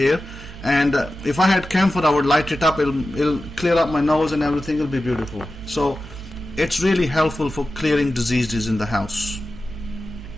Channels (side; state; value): right; noise; hum, 15 dB below the sound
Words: and if I had camphor, I would light it up. It'll clear up my nose and everything. It'll be beautiful. So it's really helpful for clearing diseases in the house.